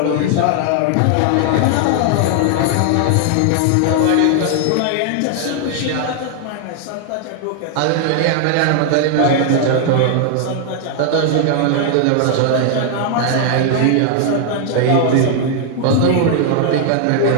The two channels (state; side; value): different; both; correlation 0.00